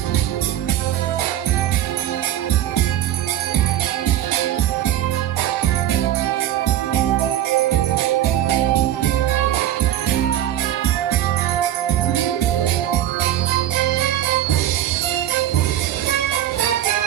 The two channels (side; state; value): left; quieter; 12.1 dB